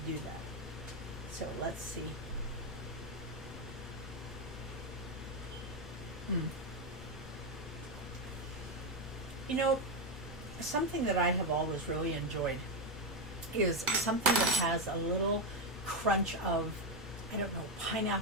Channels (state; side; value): normal; both; correlation 0.07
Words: do that. So let's see. You know, something that I have always really enjoyed is something that has a little crunch of, I don't know,